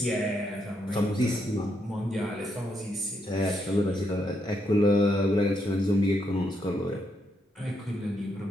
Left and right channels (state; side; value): normal; both; correlation 0.78